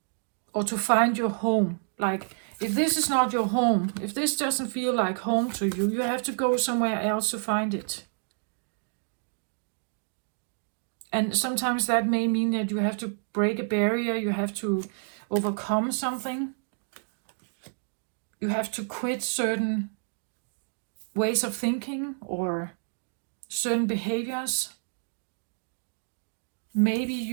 or to find your home. Like, if this is not your home, if this doesn't feel like home to you, you have to go somewhere else to find it. And sometimes that may mean that you have to break a barrier, you have to overcome something. You have to quit certain ways of thinking or certain behaviors. Maybe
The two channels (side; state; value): left; silent; digital silence